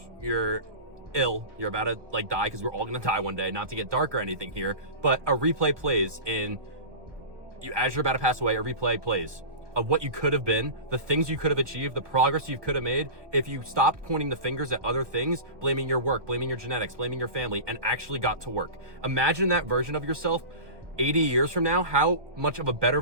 you're ill. You're about to like die, because we're all gonna die one day, not to get dark or anything here, but a replay plays as you're about to pass away, a replay plays of what you could have been, the things you could have achieved, the progress you could have made if you stopped pointing the fingers at other things, blaming your work, blaming your genetics, blaming your family, and actually got to work. Imagine that version of yourself 80 years from now, how much of a better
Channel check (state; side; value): late; left; 1.2 ms